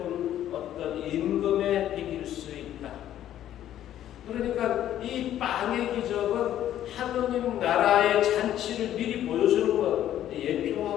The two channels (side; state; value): right; quieter; 11.7 dB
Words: 어떤 임금의 비길 수 있다. 그러니까 이 빵의 기적은 하느님 나라의 잔치를 미리 보여주는 것,